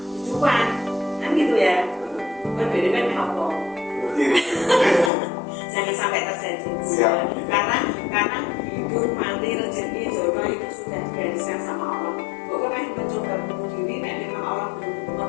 kan gitu ya. Berbeda kan apa? Jangan sampai terjadi. Karena hidup, mati, rezeki, jodoh itu sudah digariskan sama Allah. Pokoknya mencoba bunuh diri, dan memang Allah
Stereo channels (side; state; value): right; drops out; at 5.1 s